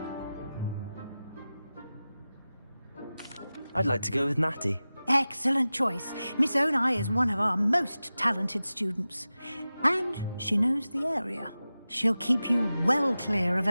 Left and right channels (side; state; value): both; inverted; correlation -0.95